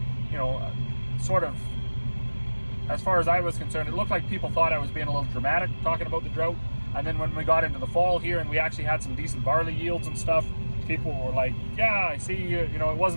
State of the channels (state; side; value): inverted; both; correlation -1.00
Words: you know, sort of, as far as I was concerned, it looked like people thought I was being a little dramatic talking about the drought. And then when we got into the fall here and we actually had some decent barley yields and stuff, people were like, yeah, I see, you know, it